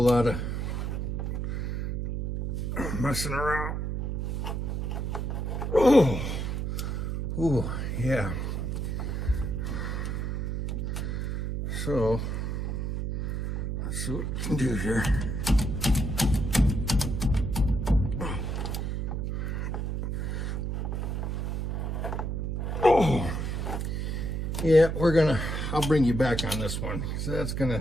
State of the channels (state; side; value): noise; right; hum, 1 dB below the sound